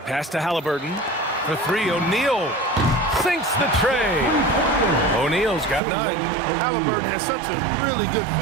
Pass to Halliburton. For three, O'Neal sinks the tray. O'Neal's got 9. Halliburton has such a really good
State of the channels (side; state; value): left; drops out; at 5.8 s